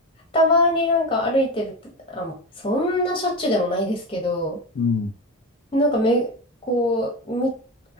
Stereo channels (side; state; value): both; normal; correlation 0.21